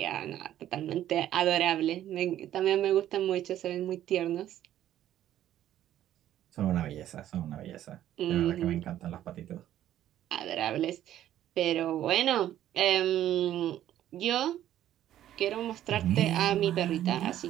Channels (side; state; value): left; quieter; 12.2 dB